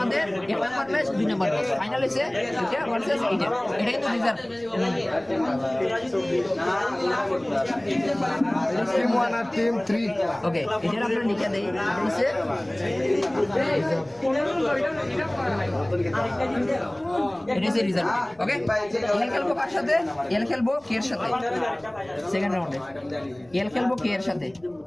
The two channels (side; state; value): left; noise; rumble, 30 dB below the sound